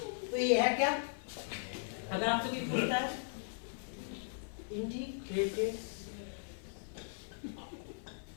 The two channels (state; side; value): silent; right; 52 dB below the other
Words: तो ये है क्या, अगर आपसे कोई पूछता है integrated